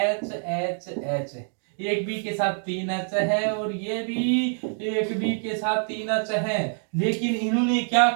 एक बी के साथ 3 H है, और ये भी एक बी के साथ 3 H है। लेकिन इन्होंने क्या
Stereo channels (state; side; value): silent; left; 61 dB below the other